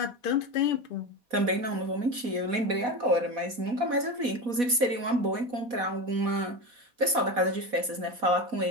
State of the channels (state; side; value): late; left; 4.1 ms